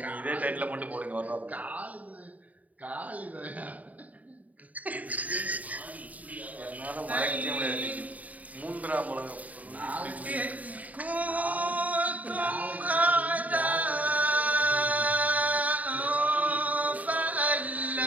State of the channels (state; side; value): late; left; 0.073 ms